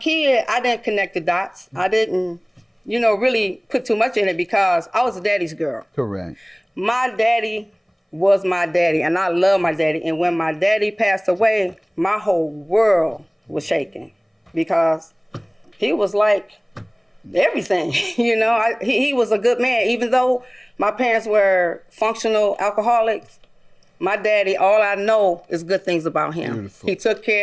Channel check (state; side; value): identical; both; correlation 1.00